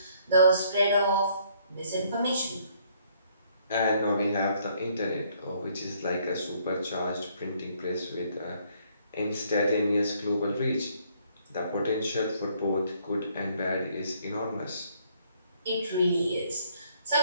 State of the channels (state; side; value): inverted; both; correlation -0.66